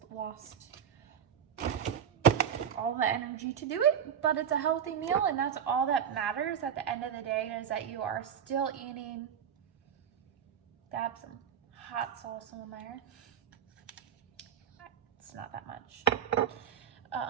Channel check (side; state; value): left; quieter; 8.5 dB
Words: lost all the energy to do it, but it's a healthy meal and that's all that matters at the end of the day, is that you are still eating. Dab some hot sauce on there. It's not that much.